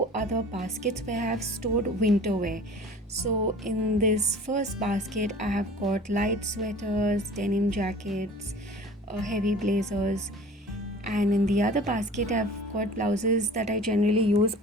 other baskets where I have stored winter wear. So in this first basket, I have got light sweaters, denim jackets, heavy blazers, and in the other basket I've got blouses that I generally use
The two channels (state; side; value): normal; both; correlation 0.44